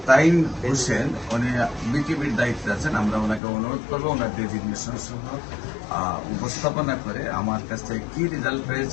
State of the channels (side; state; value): right; drops out; at 3.4 s